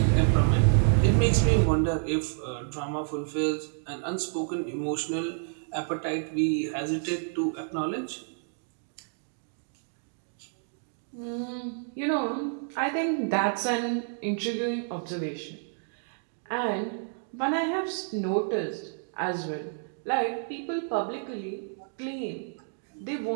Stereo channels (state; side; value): silent; left; digital silence